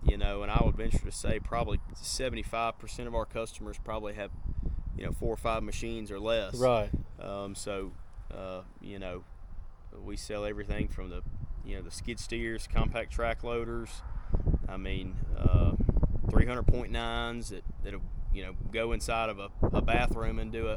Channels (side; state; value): both; identical; correlation 1.00